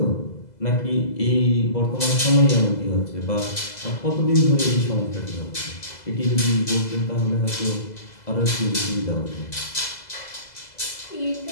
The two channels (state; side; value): late; right; 2.0 ms